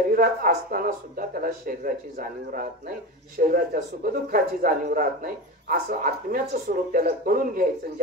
असताना सुद्धा त्याला शरीराची जाणीव राहत नाही, शरीराच्या सुखदुःखाची जाणीव राहत नाही. असं आत्म्याचं स्वरूप त्याला कळून घ्यायचं.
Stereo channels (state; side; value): normal; both; correlation 0.25